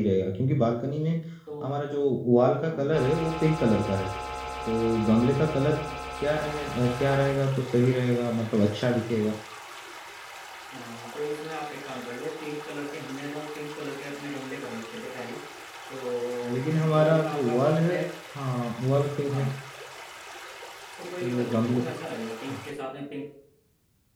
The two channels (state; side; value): identical; both; correlation 1.00